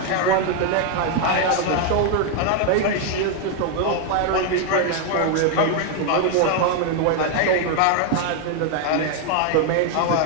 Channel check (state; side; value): different; both; correlation 0.00